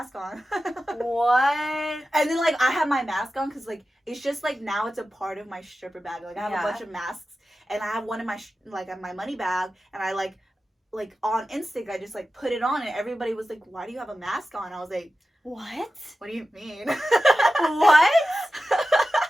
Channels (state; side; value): normal; both; correlation 0.93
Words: on. What? And then, like, I had my mask on because, like, it's just, like, now it's a part of my stripper bag. Like, I have a bunch of masks, and I have one in my, my money bag, and I, like, on instinct, I just, like, put it on, and everybody was like, why do you have a mask on? I was like, what? What do you mean? What?